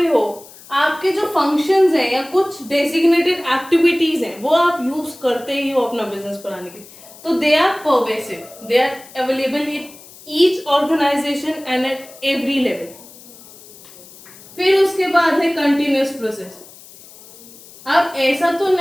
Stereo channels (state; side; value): noise; left; hiss, 21 dB below the sound